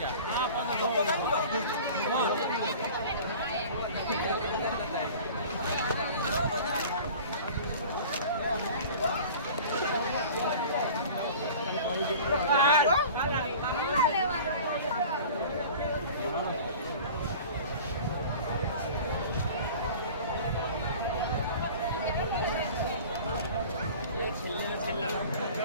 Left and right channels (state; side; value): inverted; both; correlation -0.41